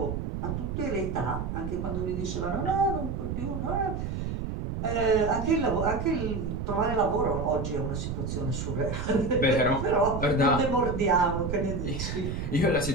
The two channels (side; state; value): right; noise; rumble, 4 dB below the sound